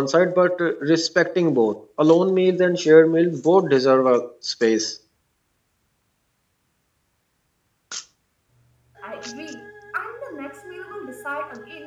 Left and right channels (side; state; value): both; identical; correlation 1.00